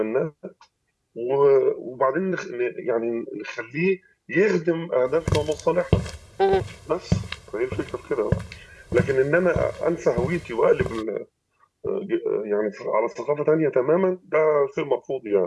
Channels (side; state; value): both; identical; correlation 1.00